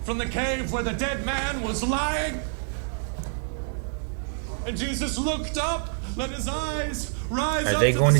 from the cave where the dead man was lying. And Jesus looked up, let his eyes rise up. Are they going to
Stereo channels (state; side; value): silent; left; 60 dB below the other